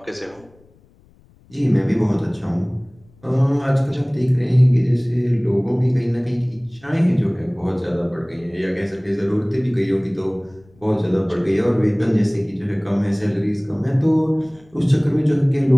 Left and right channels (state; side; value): noise; left; rumble, 29 dB below the sound